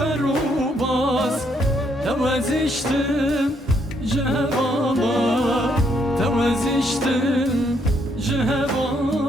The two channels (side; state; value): both; normal; correlation 0.72